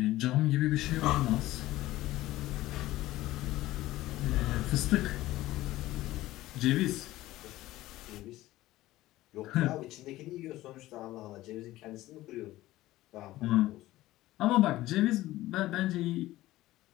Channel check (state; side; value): quieter; right; 16.5 dB